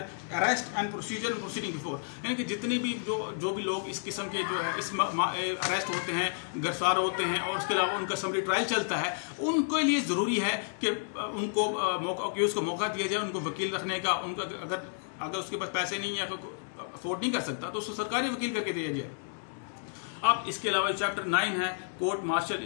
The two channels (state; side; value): silent; right; digital silence